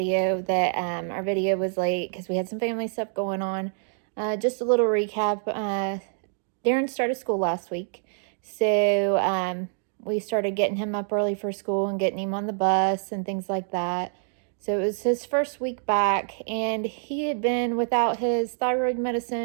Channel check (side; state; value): left; silent; digital silence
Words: that our video was late because we had some family stuff going on. Just a little recap. Darren started school last week. So we started getting him up early for school and getting him on the bus and things like that. So it was his first week back, and he had been without his thyroid